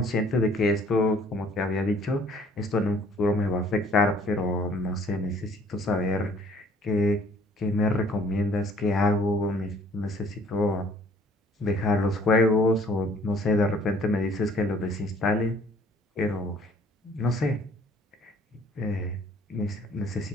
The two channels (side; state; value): both; normal; correlation 0.57